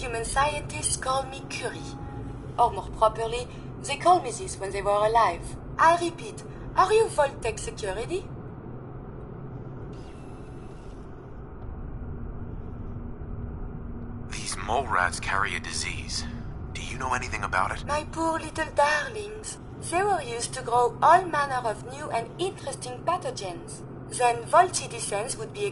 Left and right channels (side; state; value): both; identical; correlation 1.00